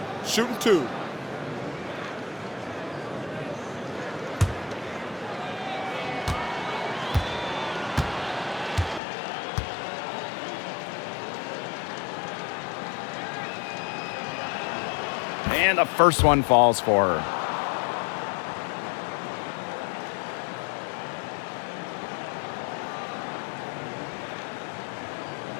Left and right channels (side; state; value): right; drops out; at 9.0 s